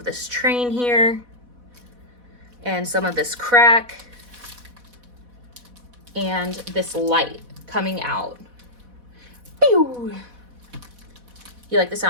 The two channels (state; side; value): late; left; 4.1 ms